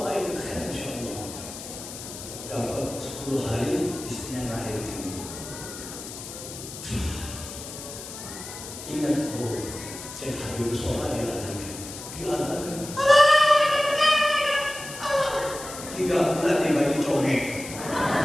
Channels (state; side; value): noise; left; hiss, 11 dB below the sound